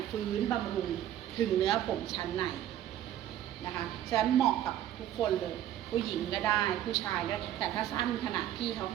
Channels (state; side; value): quieter; left; 11.8 dB